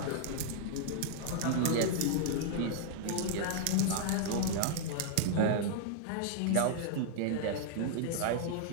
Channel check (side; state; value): both; different; correlation -0.01